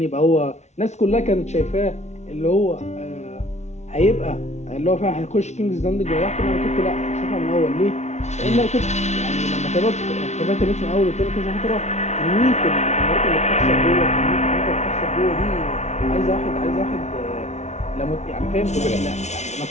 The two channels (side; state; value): right; late; 0.32 ms